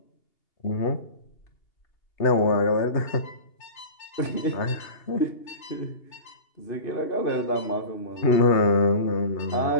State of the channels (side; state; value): right; late; 2.8 ms